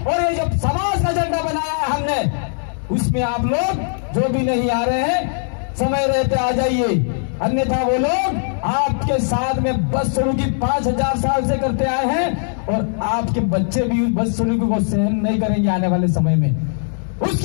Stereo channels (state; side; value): silent; right; digital silence